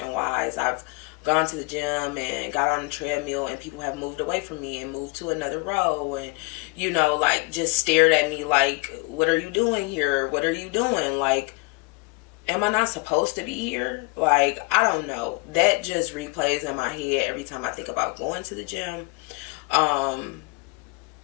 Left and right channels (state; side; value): quieter; right; 28.1 dB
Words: wise. I've gone to the gym and got on the treadmill and people have moved away from me and moved to another row and, like just stared at me like, what are you doing here? What are you doing? Like, am I not supposed to be here? Like, I don't know. That just replays in my head every time I think about going to the gym. And